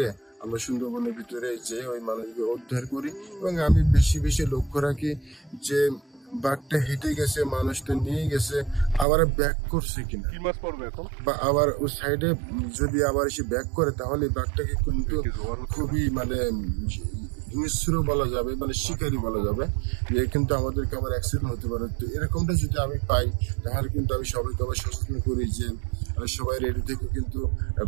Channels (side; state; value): left; drops out; at 9.1 s